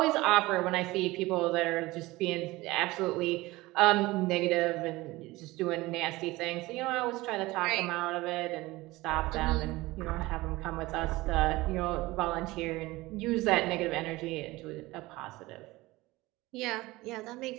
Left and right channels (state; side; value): quieter; left; 19.9 dB